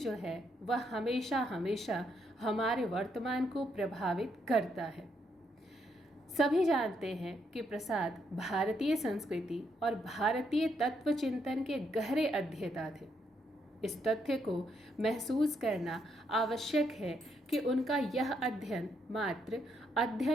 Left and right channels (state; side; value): normal; both; correlation 0.76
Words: है वह हमेशा हमेशा हमारे वर्तमान को प्रभावित करता है। सभी जानते हैं कि प्रसाद भारतीय संस्कृति और भारतीय तत्व चिंतन के गहरे अध्येता थे। इस तथ्य को महसूस करना आवश्यक है कि उनका यह अध्ययन मात्र